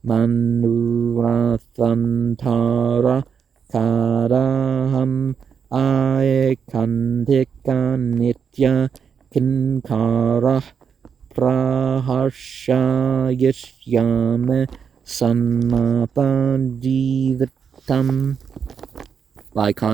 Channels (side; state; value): left; quieter; 6.8 dB